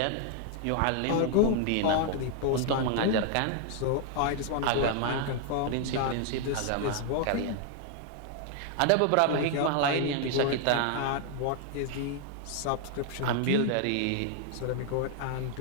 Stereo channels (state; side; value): different; both; correlation 0.00